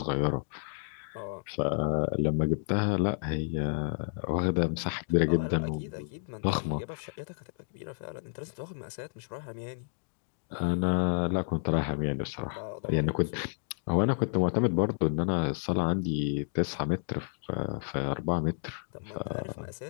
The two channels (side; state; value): right; silent; digital silence